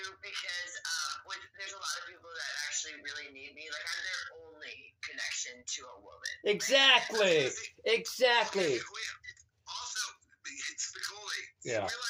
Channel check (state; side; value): identical; both; correlation 1.00